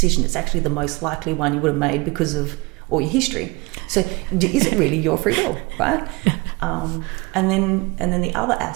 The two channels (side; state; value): left; quieter; 25.2 dB